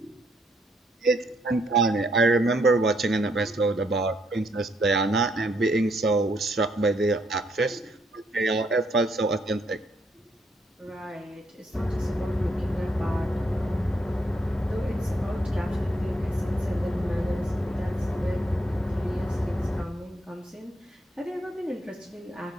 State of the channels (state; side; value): normal; both; correlation 0.72